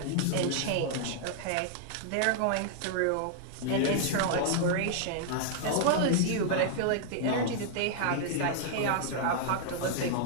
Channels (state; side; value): different; both; correlation -0.01